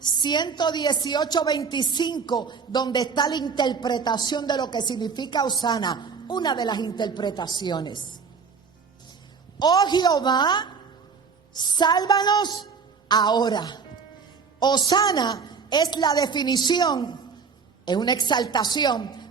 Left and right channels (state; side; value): quieter; left; 5.6 dB